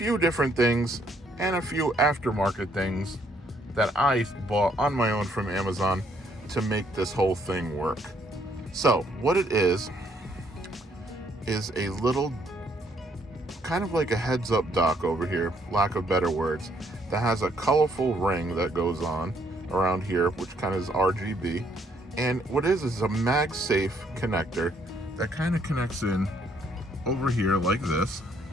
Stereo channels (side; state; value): both; normal; correlation 0.68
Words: different things and a few aftermarket things that I bought on my own from Amazon to make this whole thing work. So, what it is a little kind of like a heads-up dock over here, lack of better words, that has a colorful ring that goes on around here, which kind of is RGB. And what it is a MagSafe connector that kind of connects in over here like this,